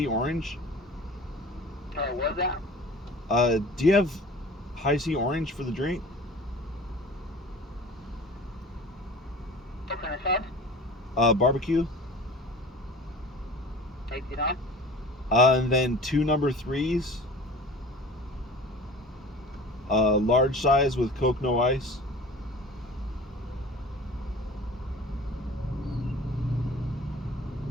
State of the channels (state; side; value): normal; both; correlation 0.41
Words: orange? What was that? Do you have high C orange for the drink? What kind of sauce? Barbecue. $18. And then 2 number 3s. Large size with Coke, no ice.